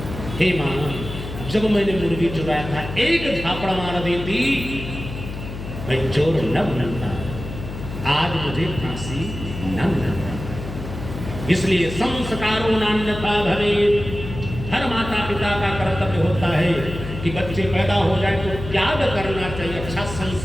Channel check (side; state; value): left; noise; hum, 9 dB below the sound